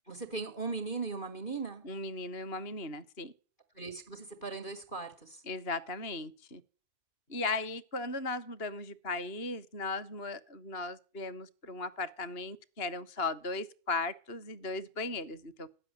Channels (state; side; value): late; right; 2.8 ms